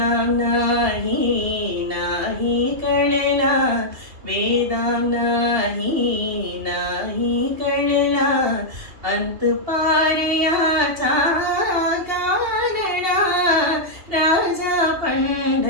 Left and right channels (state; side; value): late; left; 2.7 ms